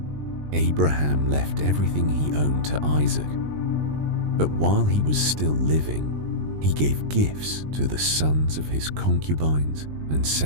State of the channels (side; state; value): left; late; 20 ms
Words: Abraham left everything he owned to Isaac, but while he was still living, he gave gifts to the sons of his concubines and